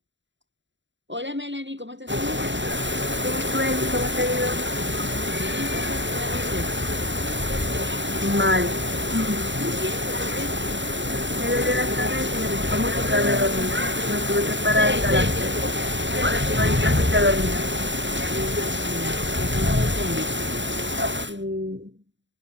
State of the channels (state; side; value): late; left; 0.54 ms